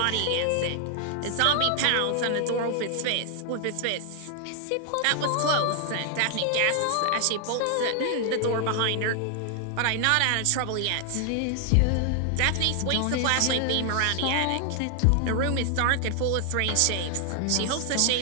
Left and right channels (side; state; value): both; different; correlation 0.00